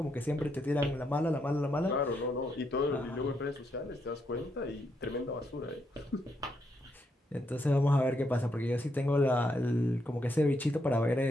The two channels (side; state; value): both; normal; correlation 0.79